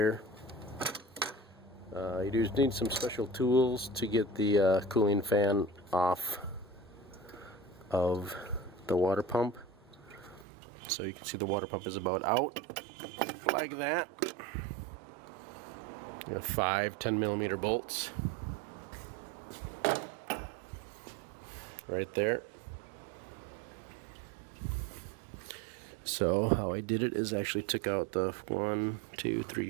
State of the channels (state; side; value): drops out; left; at 10.5 s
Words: You do need some special tools to get the cooling fan off of the water pump. So you can see the water pump is about out like that. You have 5 10mm bolts right there. So how I did it is actually took out the 1, 2,